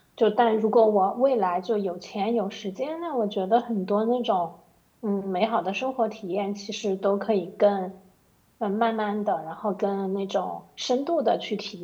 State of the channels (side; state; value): both; identical; correlation 1.00